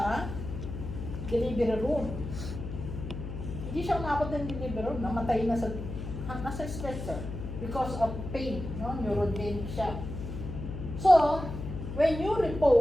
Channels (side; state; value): left; noise; hum, 7 dB below the sound